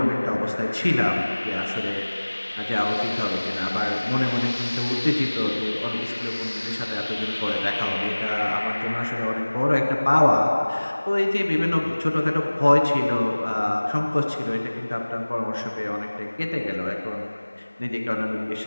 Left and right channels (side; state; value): both; inverted; correlation -1.00